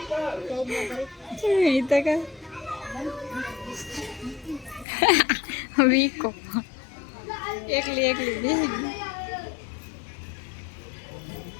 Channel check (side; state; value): right; drops out; at 4.9 s